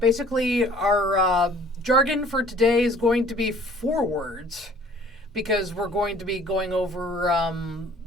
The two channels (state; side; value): normal; both; correlation 0.53